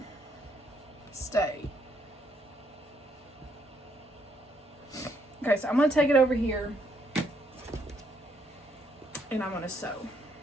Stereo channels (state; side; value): normal; both; correlation 0.72